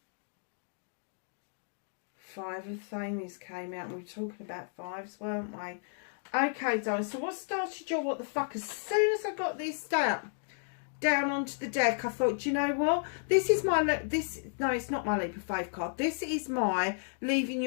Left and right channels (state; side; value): silent; right; digital silence